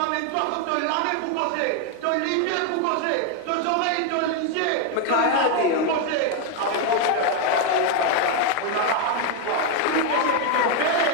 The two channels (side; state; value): both; different; correlation 0.01